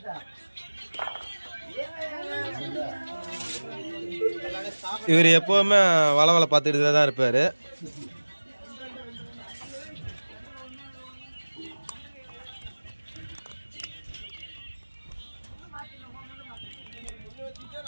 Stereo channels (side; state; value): both; inverted; correlation -1.00